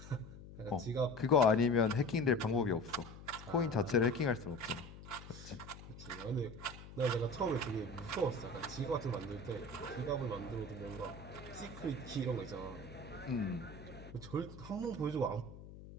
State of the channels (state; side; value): noise; left; hum, 15 dB below the sound